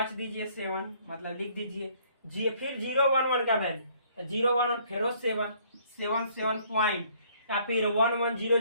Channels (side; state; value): both; inverted; correlation -0.62